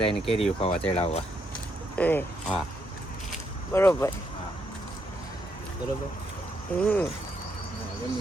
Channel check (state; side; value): normal; both; correlation 0.76